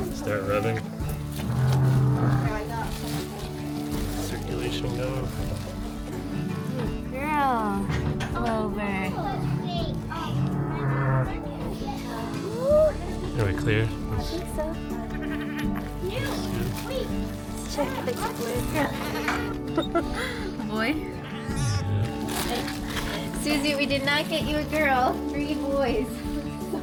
Start rubbing. Circulation going. Girl, Clover. Are we clear? I think so. Let's check the girl. Boy. Susie, we did not get you a girl. 3 boys.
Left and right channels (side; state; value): both; identical; correlation 1.00